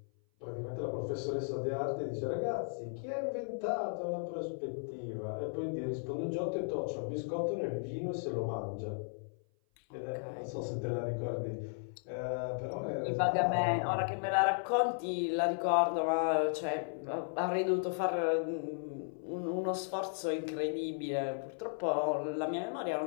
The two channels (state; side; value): silent; right; 54 dB below the other